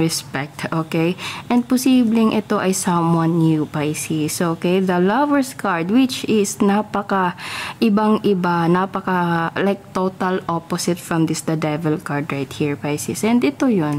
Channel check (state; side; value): identical; both; correlation 1.00